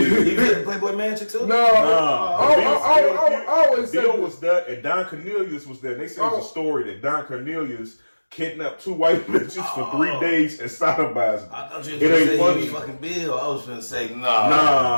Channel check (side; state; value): both; inverted; correlation -1.00